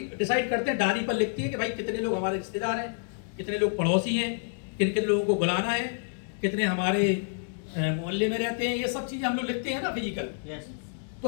डिसाइड करते हैं, डायरी पर लिखते हैं कि भाई कितने लोग हमारे रिश्तेदार हैं, कितने लोग पड़ोसी हैं, किन किन लोगों को बुलाना है, कितने हमारे मोहल्ले में रहते हैं, ये सब चीजें हम लोग लिखते हैं ना फिजिकल। तो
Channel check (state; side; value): silent; right; digital silence